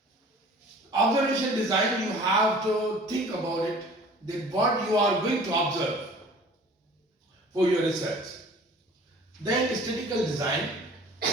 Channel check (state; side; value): normal; both; correlation 0.47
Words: observation design, you have to think about it, that what you are going to observe for your research. Then statistical design,